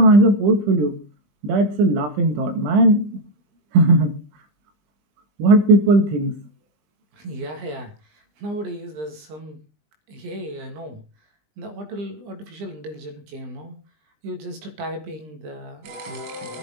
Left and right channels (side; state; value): left; late; 20 ms